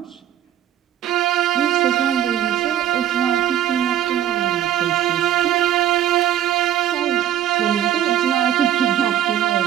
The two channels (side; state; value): left; quieter; 11.4 dB